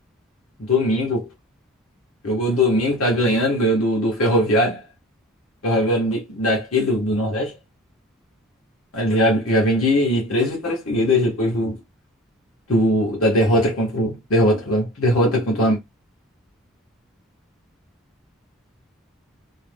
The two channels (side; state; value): both; normal; correlation 0.37